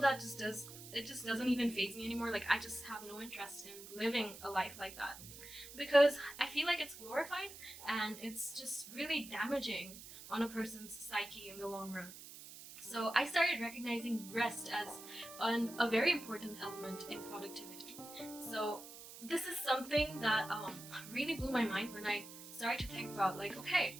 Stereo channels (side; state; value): right; noise; hiss, 14 dB below the sound